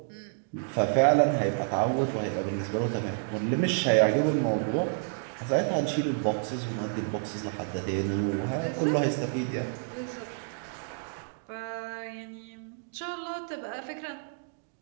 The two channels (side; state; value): left; silent; 58 dB below the other